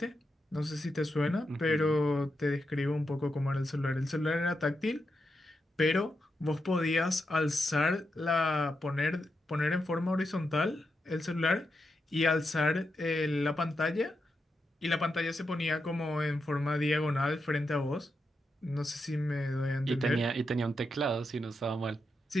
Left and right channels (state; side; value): normal; both; correlation 0.86